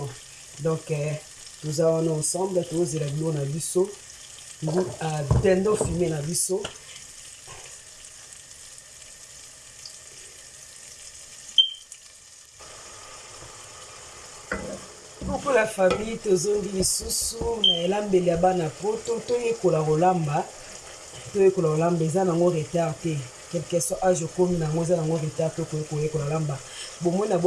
Donc toza wana ensemble tozela biloko na biso dendo filme na biso pour la famille tozongi lisusu na elambeli ya bana poto toyekola kolamba eza nango retard te quelque soit age okomi nango eza nango retard to koyekola lamba bomoi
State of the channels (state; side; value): identical; both; correlation 1.00